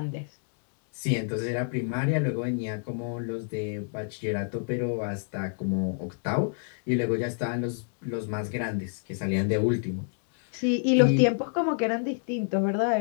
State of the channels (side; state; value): right; silent; 59 dB below the other